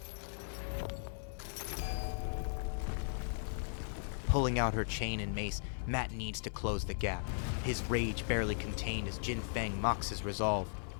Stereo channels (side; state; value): right; silent; 53 dB below the other